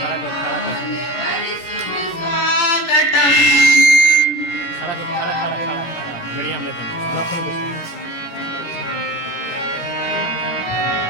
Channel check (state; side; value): late; right; 16 ms